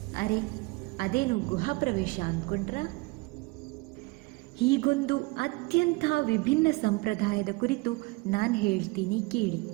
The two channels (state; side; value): quieter; left; 24.3 dB